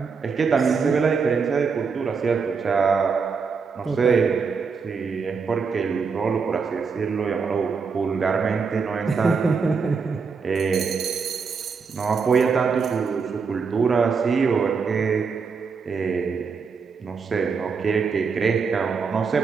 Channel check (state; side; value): quieter; left; 5.4 dB